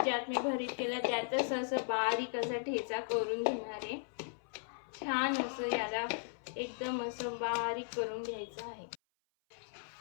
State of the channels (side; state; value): right; silent; 53 dB below the other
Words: मी भरीत केलं त्यातच असं बारीक असा ठेचा करून घेणार आहे। छान असं याला एकदम असं बारीक करून घ्यायचं आहे।